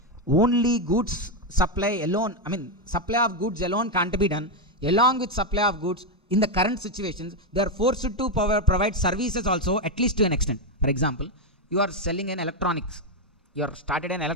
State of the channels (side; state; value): both; normal; correlation 0.05